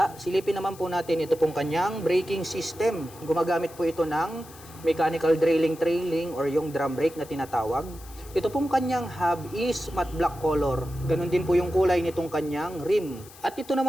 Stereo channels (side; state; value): left; noise; hiss, 20 dB below the sound